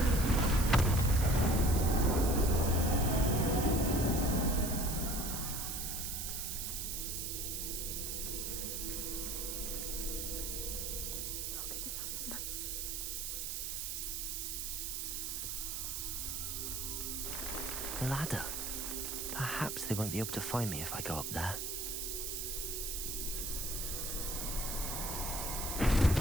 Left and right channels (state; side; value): noise; right; hiss, 3 dB below the sound